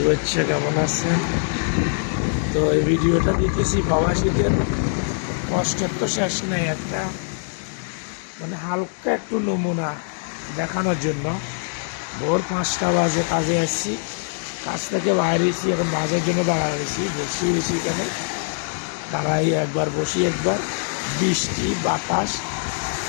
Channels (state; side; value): silent; right; digital silence